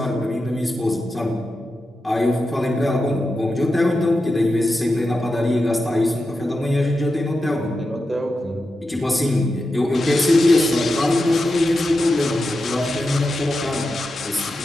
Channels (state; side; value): normal; both; correlation 0.90